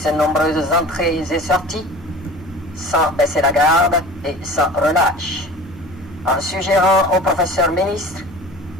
nombreuses entrées et sorties, sans baisser la garde et sans relâche, en suggérant au professeur ministre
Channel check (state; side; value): normal; both; correlation 0.40